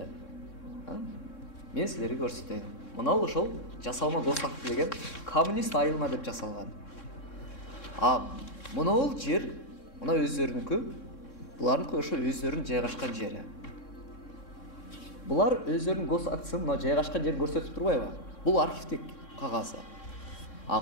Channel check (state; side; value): late; right; 3.6 ms